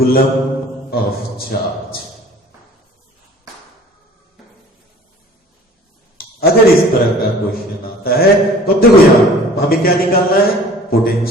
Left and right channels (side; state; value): both; normal; correlation 0.49